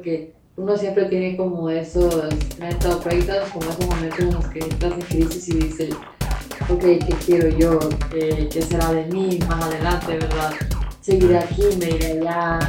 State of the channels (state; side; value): identical; both; correlation 1.00